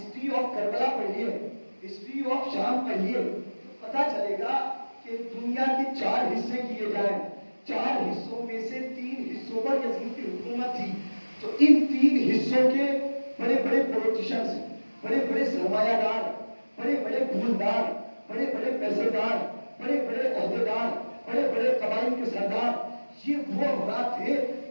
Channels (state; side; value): inverted; both; correlation -1.00